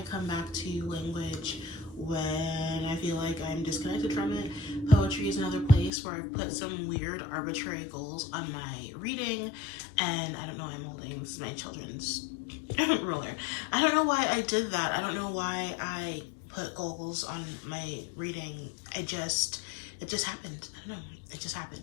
come back to language when I feel like I'm disconnected from it. Poetry is another place where I've put some weird arbitrary goals on my reading, and I don't know, I'm holding, this is my children's ruler. I don't know why I did that. I don't know why I put goals on my reading. It just happened. I don't know, it just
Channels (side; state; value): right; drops out; at 5.9 s